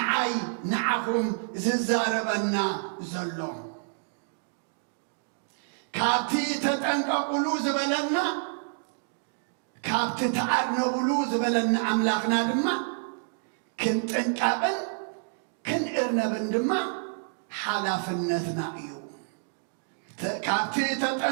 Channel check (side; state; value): left; silent; digital silence